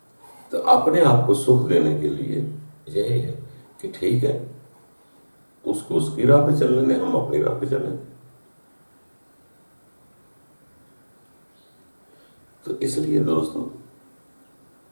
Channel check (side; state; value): both; inverted; correlation -1.00